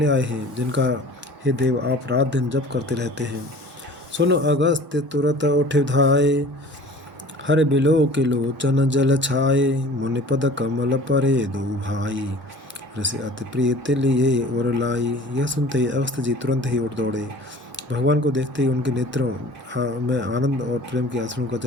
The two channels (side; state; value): both; normal; correlation 0.44